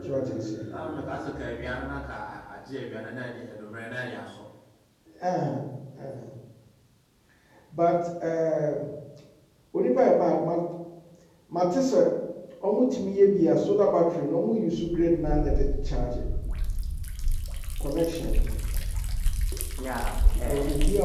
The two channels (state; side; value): identical; both; correlation 1.00